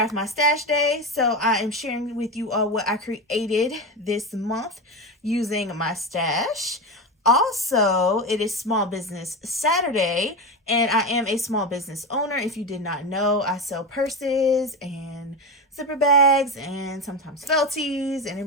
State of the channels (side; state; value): both; normal; correlation 0.18